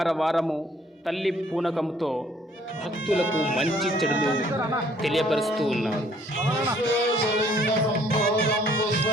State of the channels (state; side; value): normal; both; correlation 0.61